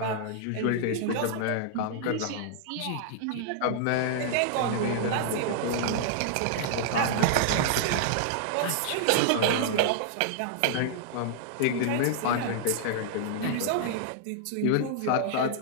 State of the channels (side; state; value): both; different; correlation -0.01